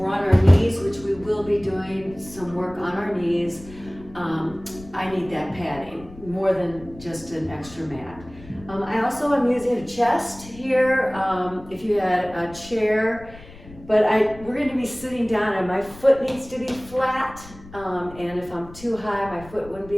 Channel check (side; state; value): left; noise; rumble, 19 dB below the sound